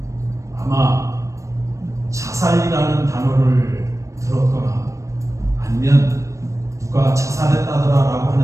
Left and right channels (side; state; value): left; late; 0.15 ms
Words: 아마 자살이라는 단어를 들었거나 아니면 누가 자살했다더라라고